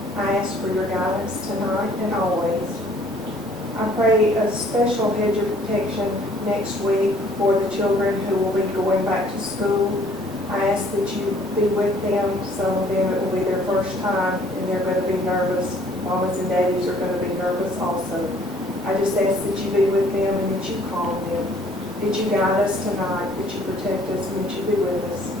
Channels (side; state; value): both; normal; correlation 0.58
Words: I ask for your guidance tonight and always. I pray a special hedge of protection next week for the children who will be going back to school. I ask that you be with them. Some of them, it will be their first time and they're going to be nervous. Mamas and daddies are going to be nervous also. I just ask that you be with them and that you calm them, that you guide us tonight, that you protect us, and that you be with us.